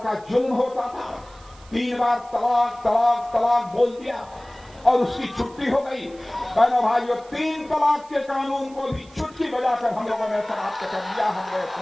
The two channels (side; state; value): right; noise; hiss, 25 dB below the sound